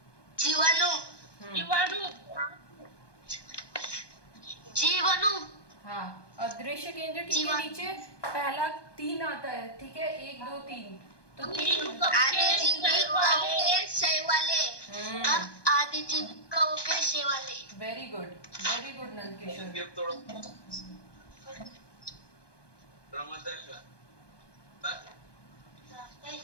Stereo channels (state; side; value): late; right; 1.2 ms